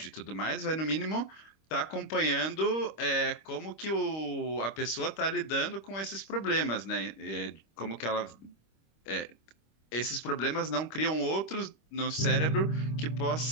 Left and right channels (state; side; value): late; right; 25 ms